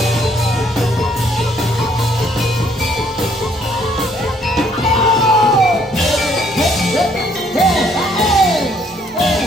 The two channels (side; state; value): both; normal; correlation 0.65